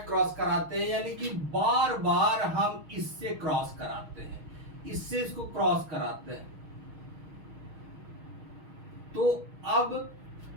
क्रॉस कराते हैं, यानी कि बार बार हम इससे क्रॉस कराते हैं, इससे इसको क्रॉस कराते हैं। तो अब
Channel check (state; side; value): late; left; 6.3 ms